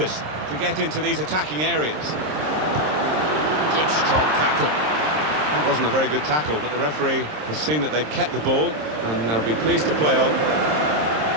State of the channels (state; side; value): late; left; 26 ms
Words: to get into these attacking areas. Good, strong tackle. That wasn't a very good tackle, but the referee has seen that they've kept the ball, and they'll be pleased to play on.